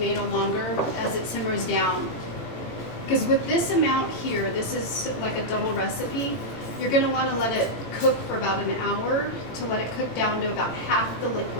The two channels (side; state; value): right; late; 18 ms